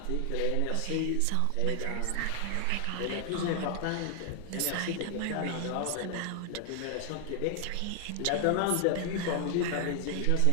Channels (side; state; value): both; different; correlation 0.00